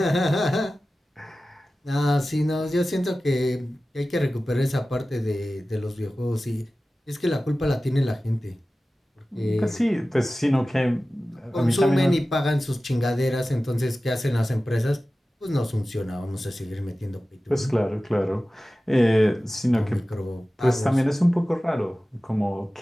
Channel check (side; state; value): both; normal; correlation 0.96